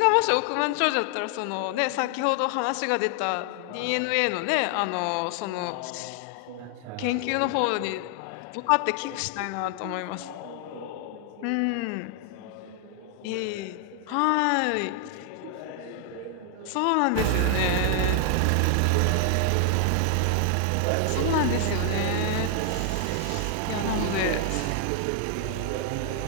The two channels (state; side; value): different; both; correlation 0.00